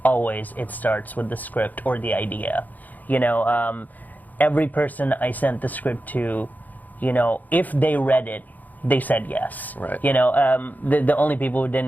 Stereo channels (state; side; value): late; right; 0.082 ms